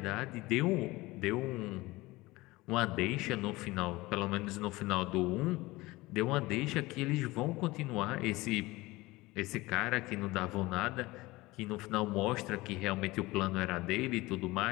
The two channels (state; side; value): quieter; right; 20.5 dB